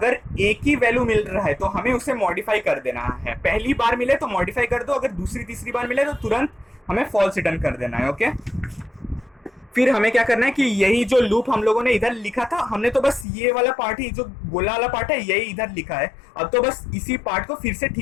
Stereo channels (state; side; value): drops out; right; at 13.2 s